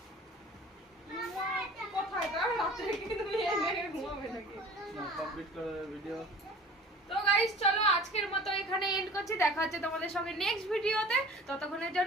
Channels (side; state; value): both; normal; correlation 0.43